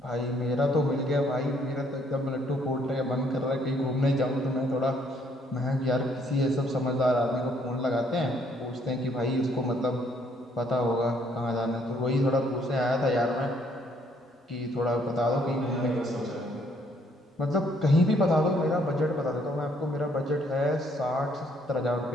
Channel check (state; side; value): normal; both; correlation 0.67